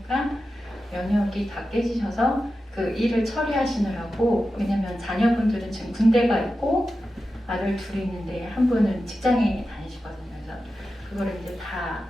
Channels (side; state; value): both; normal; correlation 0.92